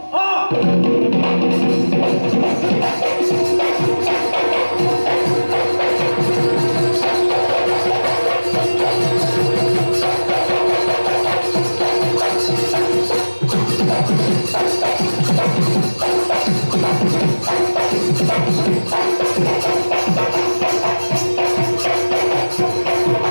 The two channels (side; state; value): both; inverted; correlation -1.00